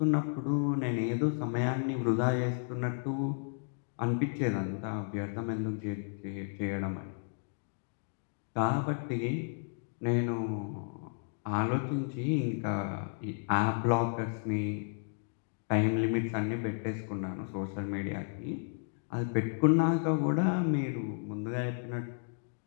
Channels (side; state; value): right; silent; digital silence